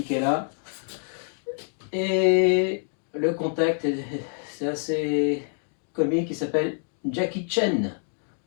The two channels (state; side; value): silent; right; digital silence